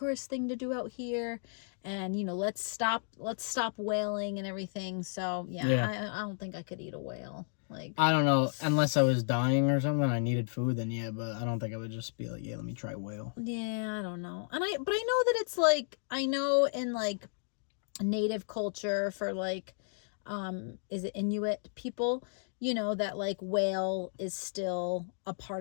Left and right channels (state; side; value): silent; right; digital silence